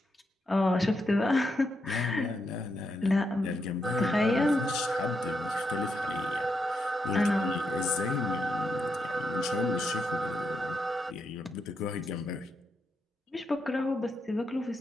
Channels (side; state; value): both; normal; correlation 0.82